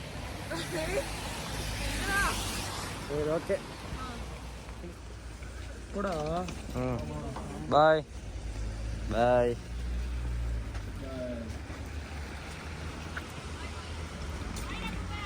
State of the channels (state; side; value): identical; both; correlation 1.00